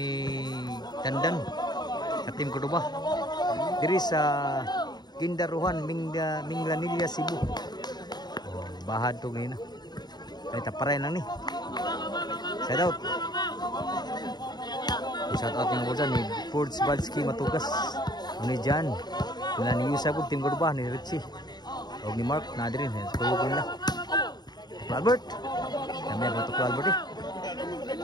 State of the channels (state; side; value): late; right; 0.20 ms